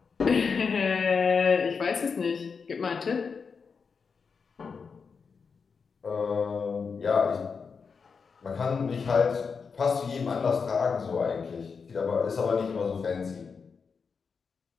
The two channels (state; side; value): quieter; right; 5.5 dB